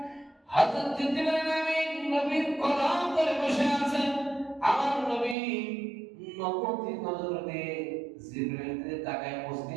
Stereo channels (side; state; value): left; drops out; at 5.4 s